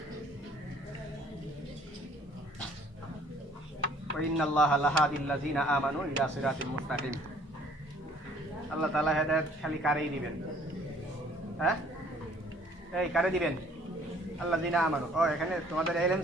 ইন্নাল্লাহা লাহাদিল লাযিনা আমানু ইলা সিরাতিল মুস্তাকিম। আল্লাহ তাআলা হেদায়েত খালি কারেই দিবেন, হ্যাঁ, এই কারে দিবেন, আল্লাযিনা আমানু। ও এখানে তোমাদের ইলম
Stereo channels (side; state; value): both; normal; correlation 0.57